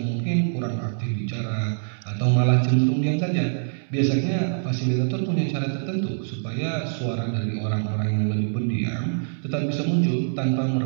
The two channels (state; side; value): silent; left; digital silence